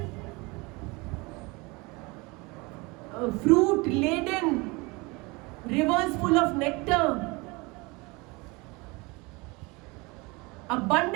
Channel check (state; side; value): quieter; left; 25.7 dB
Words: fruit laden, rivers full of nectar,